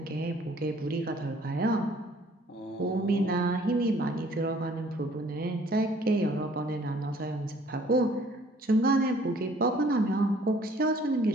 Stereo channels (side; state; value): both; normal; correlation 0.57